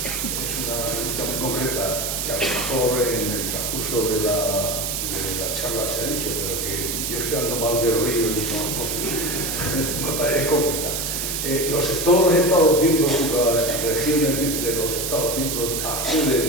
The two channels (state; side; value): noise; right; hiss, 2 dB below the sound